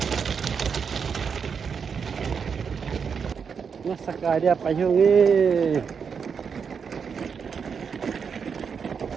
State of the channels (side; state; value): left; quieter; 6.3 dB